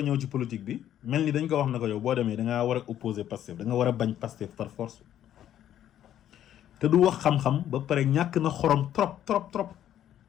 ñëw ci politique bi mel ni dañ ko wax na ko yow boo demee da ngaa war a opposer Pastef da nga war a bañ Pastef par force te du wax xam-xam ba pare ñàkk na xorom trop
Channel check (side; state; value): right; quieter; 11.1 dB